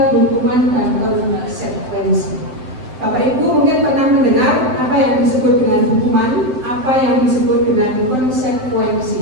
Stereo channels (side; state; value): left; late; 7.8 ms